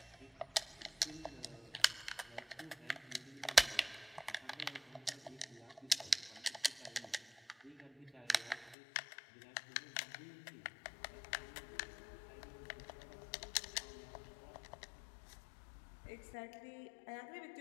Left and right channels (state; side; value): drops out; right; at 8.8 s